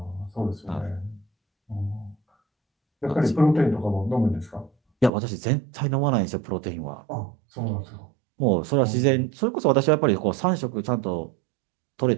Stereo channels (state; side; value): drops out; left; at 5.1 s